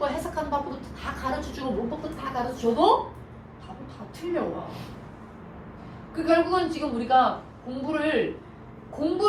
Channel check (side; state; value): both; identical; correlation 1.00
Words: 해석하는 방법도 다 가르쳐주고 문법도 다 가르쳐줘도 답은 다 틀려와. 그 결국은 지금 우리가